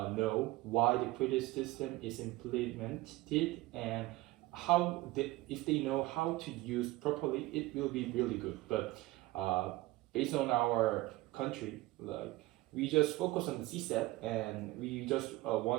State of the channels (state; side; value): quieter; left; 18.9 dB